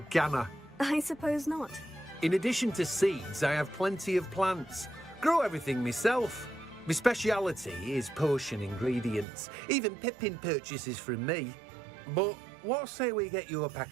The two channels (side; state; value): left; drops out; at 9.2 s